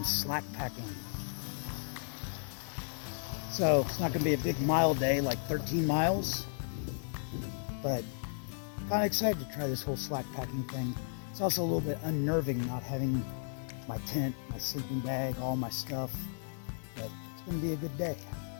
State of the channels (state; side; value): silent; right; digital silence